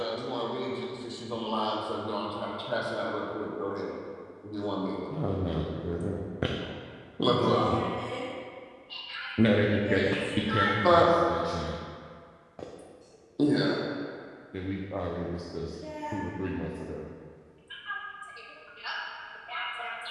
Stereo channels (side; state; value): both; identical; correlation 1.00